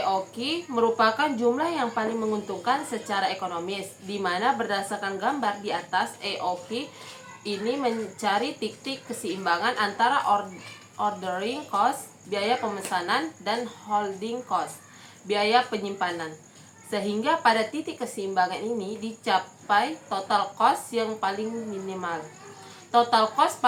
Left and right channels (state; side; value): identical; both; correlation 1.00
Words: merupakan jumlah yang paling menguntungkan secara ekonomis, di mana berdasarkan gambar di atas, EOQ ini mencari titik keseimbangan antara ordering cost, biaya pemesanan, dan holding cost, biaya penyimpanan. Sehingga pada titik keseimbangan ini dicapai total cost yang paling minimal. Total cost